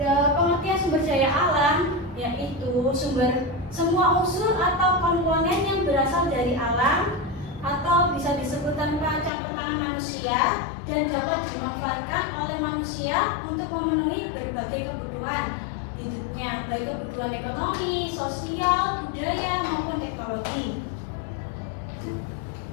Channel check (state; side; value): drops out; right; at 9.3 s